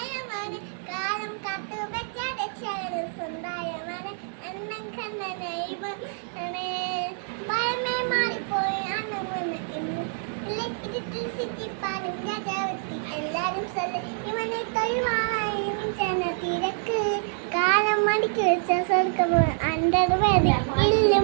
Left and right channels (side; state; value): left; silent; digital silence